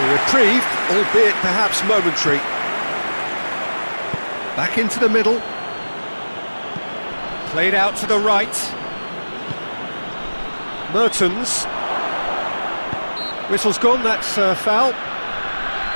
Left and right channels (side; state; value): both; inverted; correlation -1.00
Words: reprieve, albeit perhaps momentary. Back into the middle. Played out to the right. Mertens. Whistle's gone, that's foul.